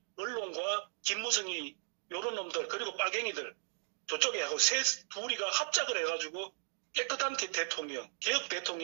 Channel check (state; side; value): silent; left; digital silence